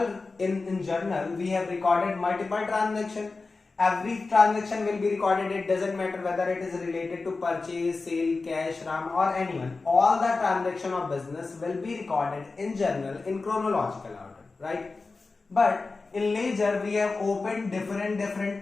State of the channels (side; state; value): right; quieter; 3.9 dB